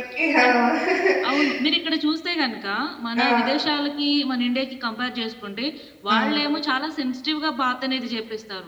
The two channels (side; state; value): both; identical; correlation 1.00